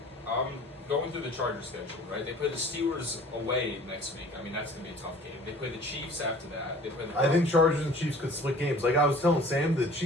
Going through the Chargers schedule, right? They play the Steelers away next week. I mean, that's going to be a tough game. They play the Chiefs after that. They play the I think Chargers and Chiefs could split games. Like I was telling Sam, the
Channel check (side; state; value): both; normal; correlation 0.48